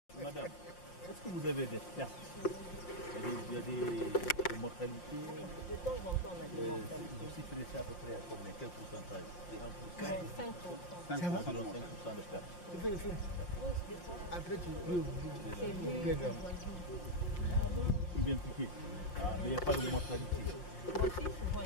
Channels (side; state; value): right; late; 5.7 ms